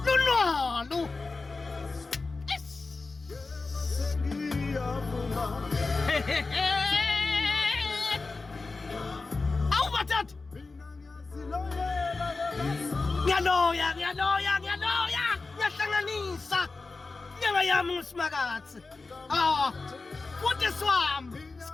lunalo. Awu madoda, ngiyaloya, ngiyahlanganisa nyanga yami nguSimakatsi. Futhi swami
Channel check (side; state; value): right; quieter; 3.8 dB